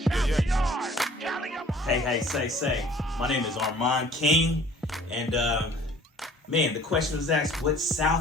Cali, Hey, say. My name is Armand King. And, man, the question was asked, what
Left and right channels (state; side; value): normal; both; correlation 0.52